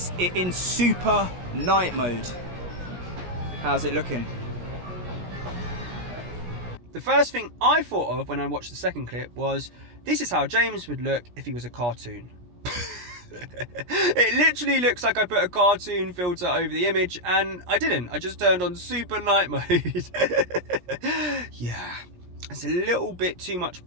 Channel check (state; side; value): late; left; 17 ms